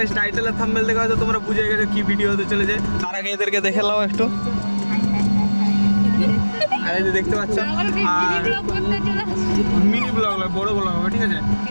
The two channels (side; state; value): both; inverted; correlation -1.00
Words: টাইটেল আর থাম্বনেল দেখে হয়তো তোমরা বুঝে গেছো কি ভিডিও হতে চলেছে। তার আগে এদেরকে দেখে নাও একটু। আর এই যে দেখতে পাচ্ছ, আর মিনি ব্লগ হবে, বড় ব্লগ হবে, ঠিক আছে।